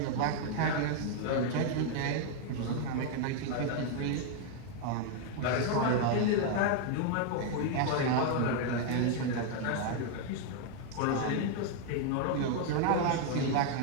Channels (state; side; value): different; both; correlation 0.00